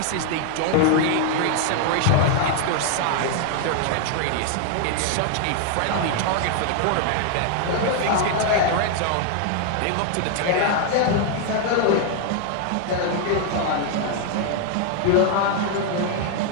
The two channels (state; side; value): different; both; correlation 0.00